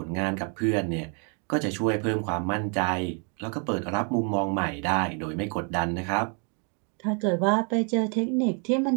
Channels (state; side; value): quieter; left; 38.3 dB